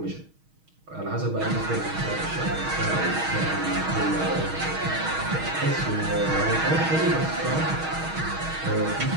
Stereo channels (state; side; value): late; left; 6.3 ms